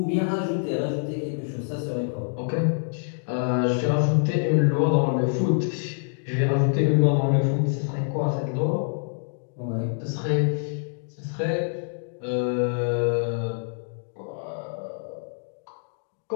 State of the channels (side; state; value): right; silent; digital silence